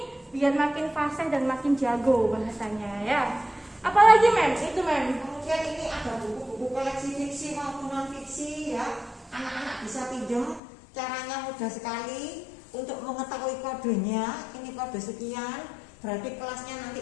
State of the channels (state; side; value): drops out; right; at 10.6 s